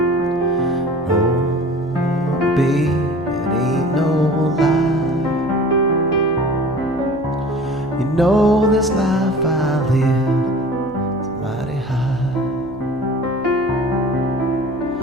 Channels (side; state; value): left; noise; hum, 20 dB below the sound